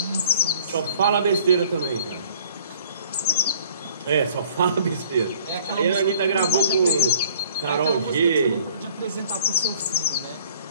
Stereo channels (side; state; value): both; inverted; correlation -0.55